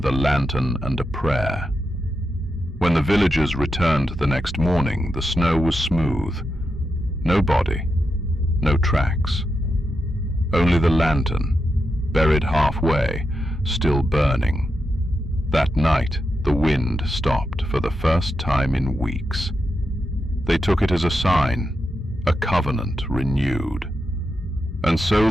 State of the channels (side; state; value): both; normal; correlation 0.86